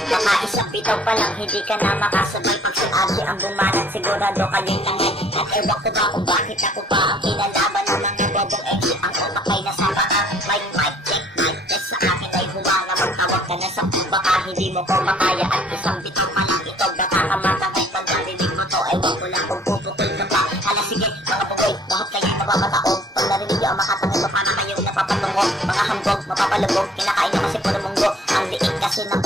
Baka isang pitaw pa lang, hindi ka na makasabay. Pag si Ate ang bumanat, sigurado kayo'y tangay. At ewan ko ba kung bakit ako pa ang kinalaban ng mga gadong exit. Ang utak ay nasama ka, mic check, mic test. Sa akin ay humana, magtawag ka na sa baka hindi mo ko makaya. At isang bitaw pa lang ito, nakakamatangay. Pag narinig mo to, ewan ko lang kung puputol ka pa. Hala sige, mga bugoy, bakit kayo'y nababataog? Pag narinig yung makatangay to, paano kayong napapatungo? Mga hambog, mapapalubog, kinakain na kasi puro munggo. Ang liit kaso ng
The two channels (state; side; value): normal; both; correlation 0.57